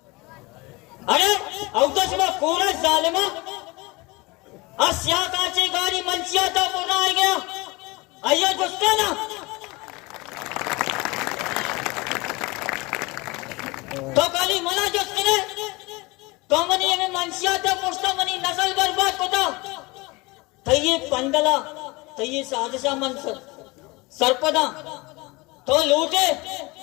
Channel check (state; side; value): quieter; right; 24.3 dB